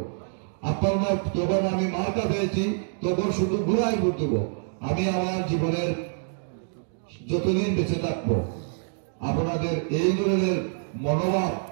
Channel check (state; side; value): silent; left; digital silence